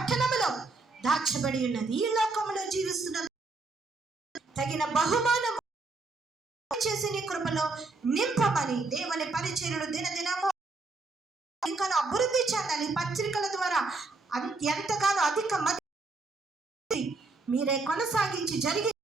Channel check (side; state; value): left; quieter; 3.6 dB